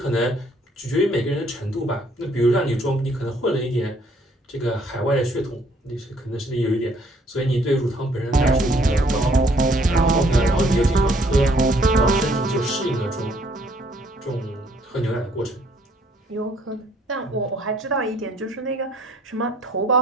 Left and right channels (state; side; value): normal; both; correlation 0.63